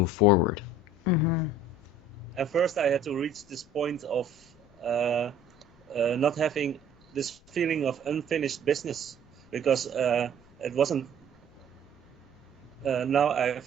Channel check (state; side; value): normal; both; correlation 0.52